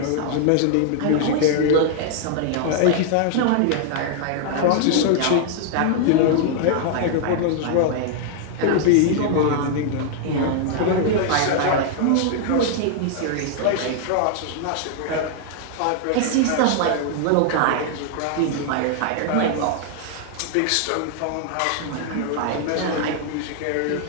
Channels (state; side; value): different; both; correlation 0.00